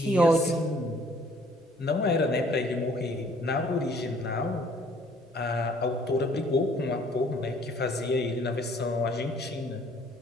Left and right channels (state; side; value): normal; both; correlation 0.59